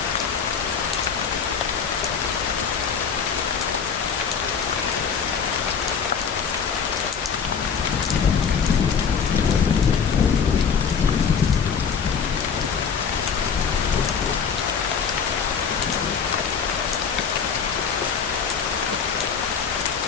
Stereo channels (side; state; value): right; quieter; 6.5 dB